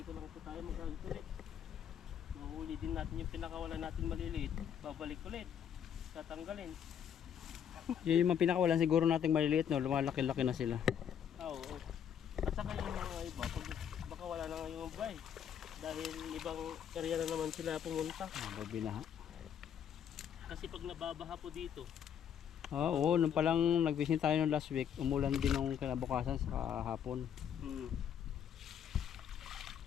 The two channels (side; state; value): right; quieter; 8.7 dB